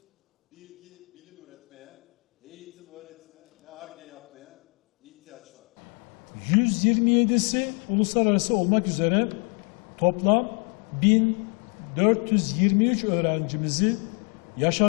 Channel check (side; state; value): right; quieter; 38.4 dB